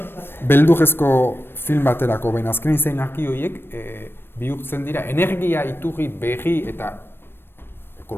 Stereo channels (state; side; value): late; right; 0.10 ms